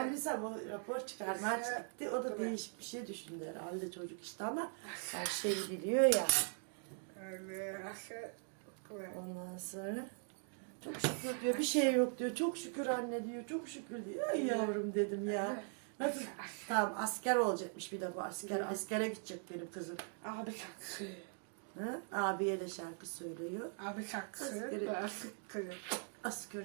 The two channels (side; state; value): left; silent; 50 dB below the other